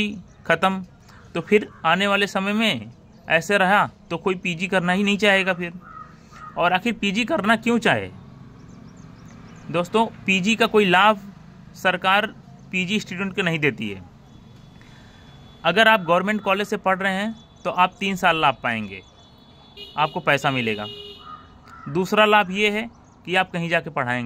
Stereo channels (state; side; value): identical; both; correlation 1.00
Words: ख़त्म। तो फिर आने वाले समय में ऐसे रहा तो कोई PG करना ही नहीं चाहेगा फिर। और आखिर PG करना क्यों चाहे? दोस्तों, PG का कोई लाभ सरकार PG स्टूडेंट को नहीं देती है। अगर आप गवर्नमेंट कॉलेज से पढ़ रहे हैं तो आप 3 साल लाभ पाएंगे, आपको पैसा मिलेगा। दूसरा लाभ ये है कि आप कहीं जाके